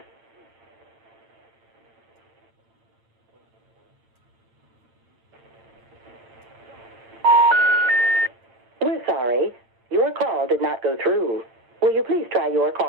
We're sorry. Your call did not go through. Will you please try your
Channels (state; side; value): late; left; 8.7 ms